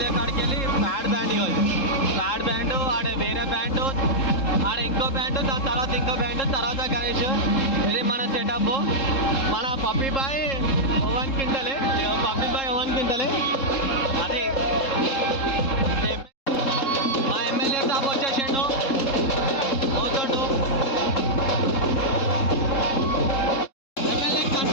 కాడికి వెళ్ళి ప్యాడ్ బ్యాండ్ ఆడ వేరే బ్యాండ్, ఆడ ఇంకో బ్యాండ్, దాని తర్వాత ఇంకో బ్యాండ్, తర్వాత గణేష్. ఇది మన సెటప్. మన పప్పీ బాయ్ ఓవెన్ క్వింటలే అది. మా ఎమ్మెల్యే సాబ్ వచ్చేసిండు, పోతుండు. MLA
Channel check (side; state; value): right; late; 3.7 ms